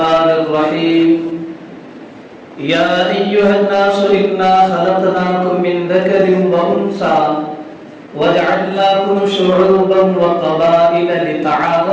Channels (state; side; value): identical; both; correlation 1.00